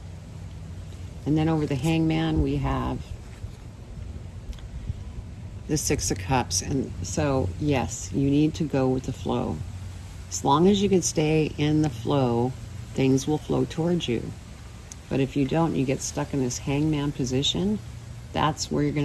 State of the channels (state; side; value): identical; both; correlation 1.00